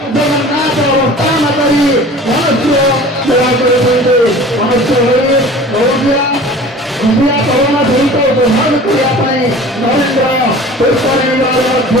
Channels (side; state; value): both; normal; correlation 0.42